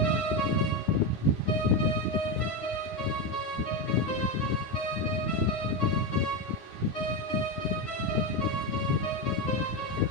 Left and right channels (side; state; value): right; late; 9.9 ms